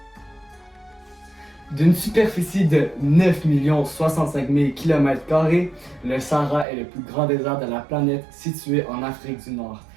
D'une superficie de 9 065 000 km², le Sahara est le plus grand désert de la planète situé en Afrique du Nord.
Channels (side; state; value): left; drops out; at 6.7 s